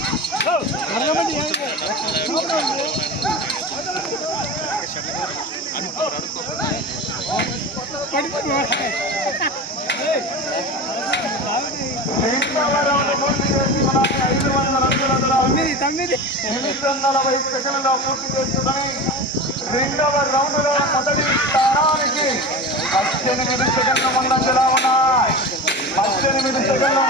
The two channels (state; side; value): normal; both; correlation 0.29